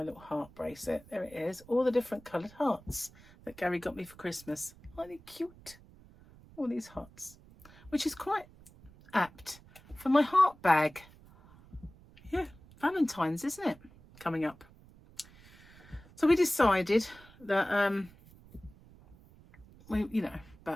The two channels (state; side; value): noise; right; rumble, 23 dB below the sound